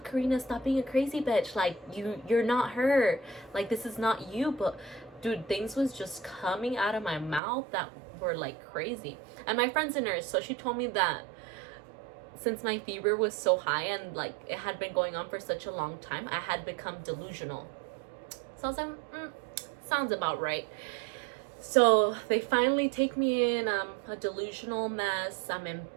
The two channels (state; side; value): drops out; left; at 7.4 s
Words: Karina, stop being a crazy bitch. Like, you're not her. Like, this is not you. But dude, things was just coming out of my mouth that were like crazy. And my friend's a nurse, so she told me that since my fever was so high and like it had been going on for such a long time, I had become delusional. So I was like, sounds about right. So they finally take me in. I'm a delusional mess.